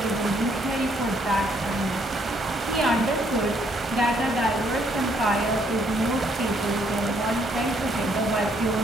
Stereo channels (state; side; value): normal; both; correlation 0.69